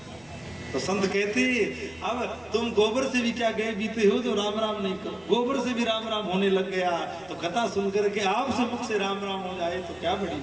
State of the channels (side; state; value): right; noise; rumble, 27 dB below the sound